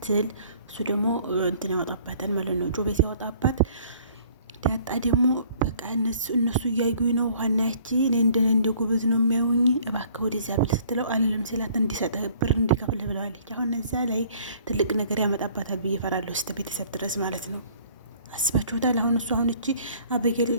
እሱ ደግሞ እንትን ያወጣባታል ማለት ነው። ጆቤ ሲያወጣባት ዳጣ ደግሞ በቃ እነሱ እያዩኝ ነው ዋናያቺ እኔ እንደ ጎበዝ ነው የሚያዩኝ እባክህ ወደዚያ ብል ስትለው አልልም ሲላት እንዲሰጥህ ብር እንዲከፍልህ ብለዋለች። አሁን እዛ ላይ ትልቅ ነገር ያመጣባታል ብዬ እፈራለሁ። እስከ ቤተሰብ ድረስ ማለት ነው። አስባችሁታል? አሁን እሱ አሁን እቺ አበጌል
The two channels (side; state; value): both; inverted; correlation -0.56